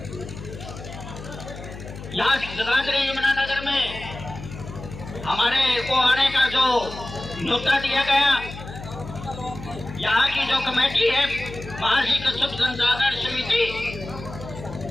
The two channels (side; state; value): left; noise; hum, 12 dB below the sound